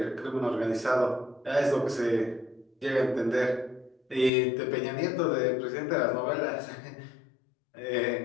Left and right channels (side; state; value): right; drops out; at 4.3 s